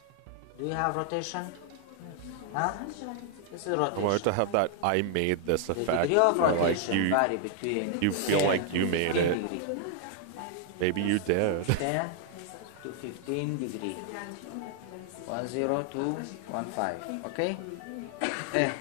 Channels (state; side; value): different; both; correlation 0.00